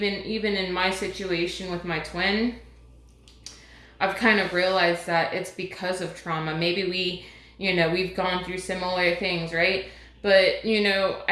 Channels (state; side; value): identical; both; correlation 1.00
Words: in my situation with my twin, I've kind of realized that it's because of trauma. Maybe we've gone through similar things, right? But,